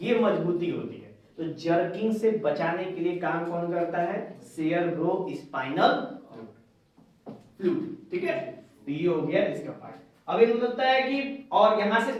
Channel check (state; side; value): identical; both; correlation 1.00